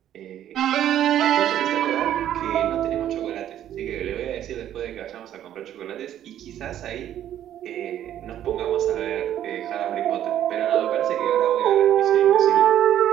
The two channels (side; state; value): left; quieter; 11.2 dB